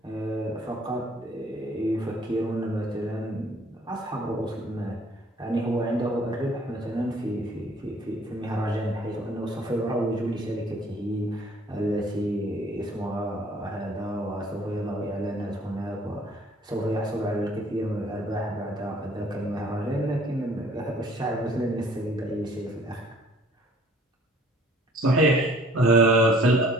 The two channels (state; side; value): normal; both; correlation 0.57